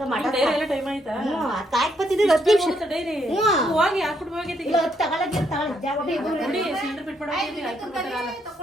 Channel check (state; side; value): normal; both; correlation 0.74